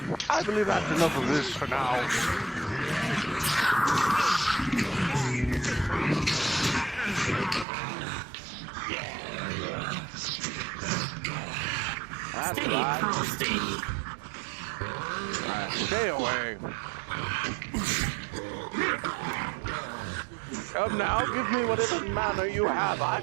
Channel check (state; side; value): drops out; left; at 7.7 s